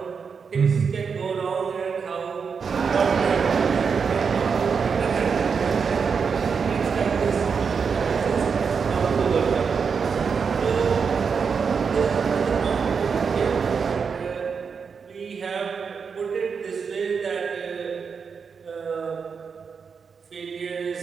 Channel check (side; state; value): left; quieter; 5.9 dB